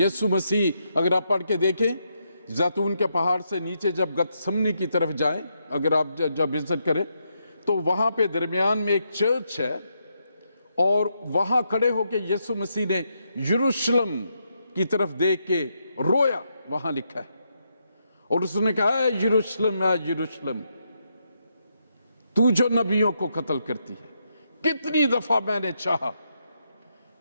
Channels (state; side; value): inverted; both; correlation -0.80